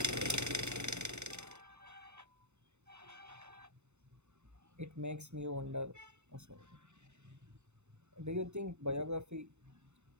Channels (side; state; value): left; late; 0.82 ms